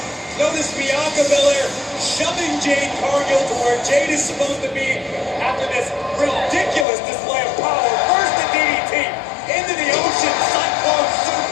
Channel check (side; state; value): right; drops out; at 6.9 s